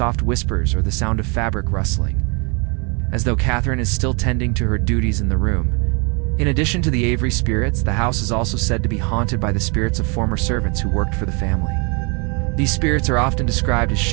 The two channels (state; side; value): quieter; left; 33.1 dB